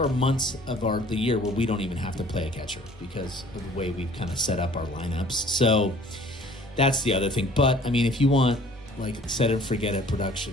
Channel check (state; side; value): normal; both; correlation 0.53